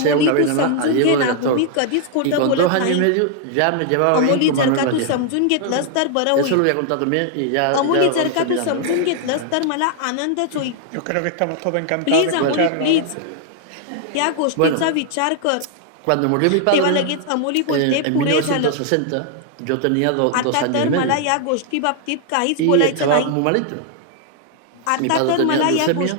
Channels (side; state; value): both; different; correlation 0.00